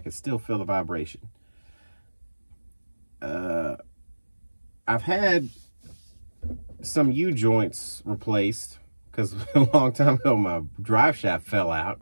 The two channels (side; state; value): both; inverted; correlation -1.00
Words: still feel the vibration. I've had some U-joints replaced because a long time ago my drive shaft fell out,